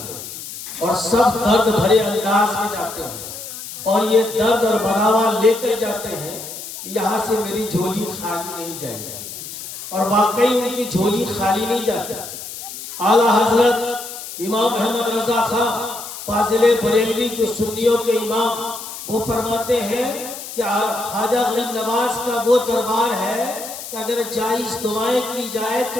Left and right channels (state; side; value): noise; left; hiss, 11 dB below the sound